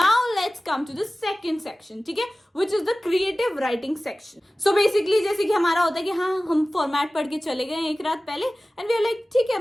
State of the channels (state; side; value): normal; both; correlation 0.97